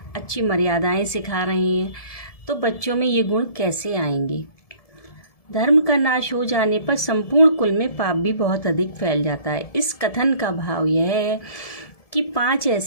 अच्छी मर्यादाएं सिखा रहे हैं, तो बच्चों में ये गुण कैसे आएंगे। धर्म का नाश हो जाने पर संपूर्ण कुल में पाप भी बहुत अधिक फैल जाता है। इस कथन का भाव यह है कि 5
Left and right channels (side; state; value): right; late; 1.7 ms